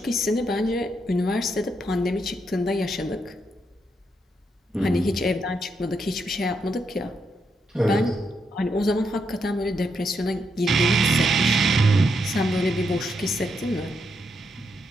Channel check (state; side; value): normal; both; correlation 0.80